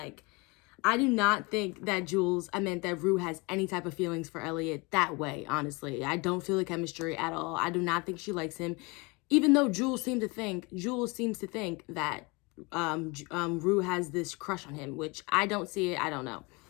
I do not think that Rue has any type of feelings for Elliot that way, honestly. I don't feel the chemistry at all. I do not think she likes him. Even though Jules seems to think that Rue has this crush on him, which I don't see it. I don't know.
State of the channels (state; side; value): quieter; right; 27.2 dB